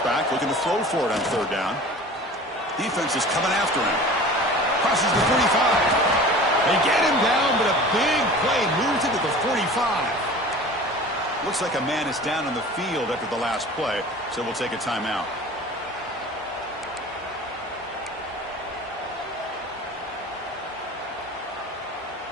back, looking to throw for it on third down. Defense is coming after him. Crosses the 45. They get him down, but a big play moves into the 45. Looks like a man is down on the field after the last play, so we'll take a timeout.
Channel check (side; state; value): both; normal; correlation 0.40